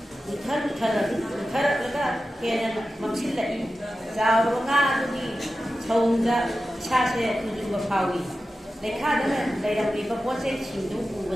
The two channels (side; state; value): both; normal; correlation 0.93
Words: ꯎꯊꯔꯛꯂꯒ ꯍꯦꯟꯅ ꯃꯝꯁꯤꯜꯂꯛꯏ ꯆꯥꯎꯔꯕ ꯉꯥ ꯑꯗꯨꯒꯤ ꯁꯧꯗ ꯏꯁꯥꯁꯦ ꯇꯨꯖꯨꯡꯕ ꯐꯥꯎꯏ ꯂꯩꯈꯥꯗ ꯂꯩꯔꯝꯂꯤꯕ ꯄꯣꯠꯆꯩꯁꯤꯡꯗꯨ